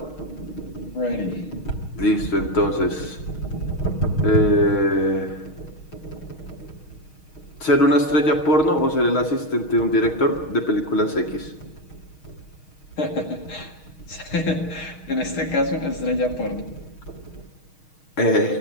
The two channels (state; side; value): late; right; 6.4 ms